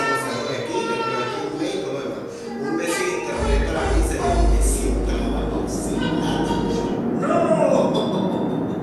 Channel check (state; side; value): identical; both; correlation 1.00